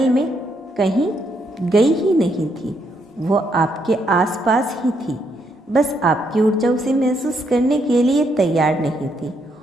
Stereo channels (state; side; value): normal; both; correlation 0.75